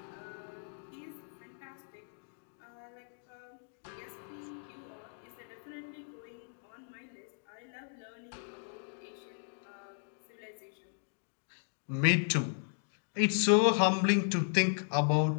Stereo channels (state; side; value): silent; right; digital silence